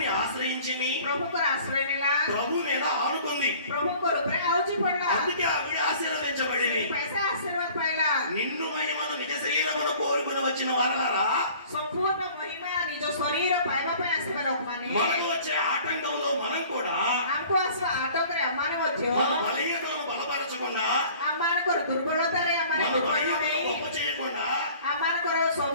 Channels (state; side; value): inverted; both; correlation -0.49